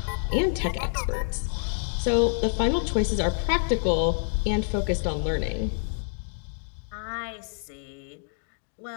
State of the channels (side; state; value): right; silent; digital silence